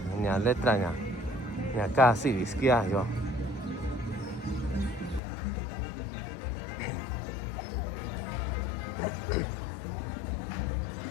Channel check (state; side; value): drops out; right; at 5.2 s